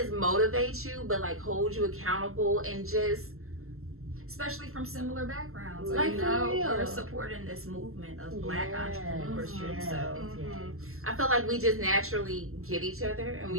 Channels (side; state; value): left; late; 0.62 ms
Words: motivate you, but like hold you accountable, and just Especially from similar backgrounds. Like, you for know, real. we're supporting this movement of Black entrepreneurship. yes, So yes. I feel like we just naturally get each other, and